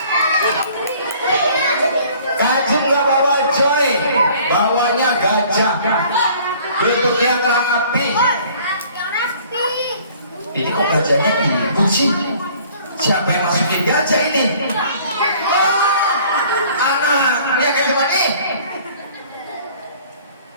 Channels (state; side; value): inverted; both; correlation -0.54